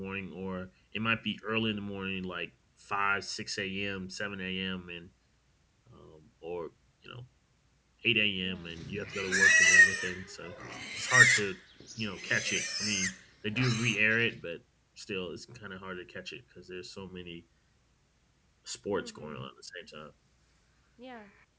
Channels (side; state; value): both; identical; correlation 1.00